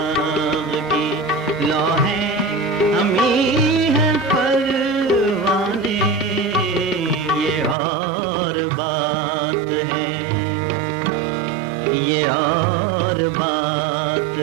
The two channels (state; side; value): drops out; left; at 7.8 s